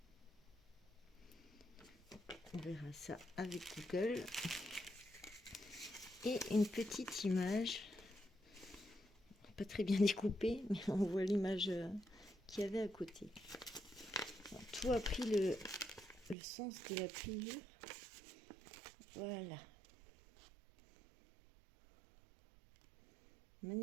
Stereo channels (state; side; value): drops out; left; at 16.4 s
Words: On verra ça avec Google. Et une petite image, pas très bien découpée, mais on voit l'image qu'il y avait à côté. Alors, tout a pris le sens de la pliure. Voilà.